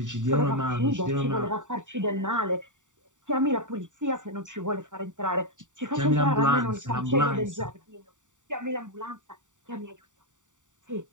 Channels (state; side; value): late; left; 0.86 ms